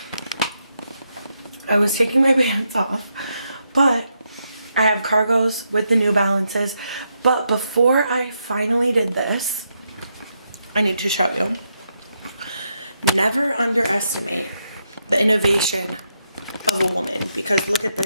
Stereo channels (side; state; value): both; inverted; correlation -0.81